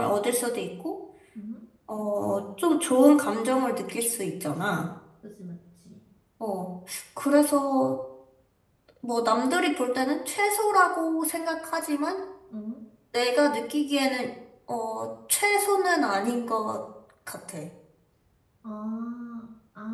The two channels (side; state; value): both; identical; correlation 1.00